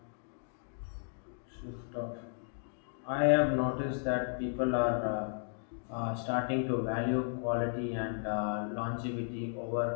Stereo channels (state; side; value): silent; right; digital silence